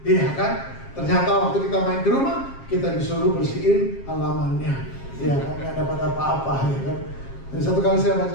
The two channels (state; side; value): late; right; 7.4 ms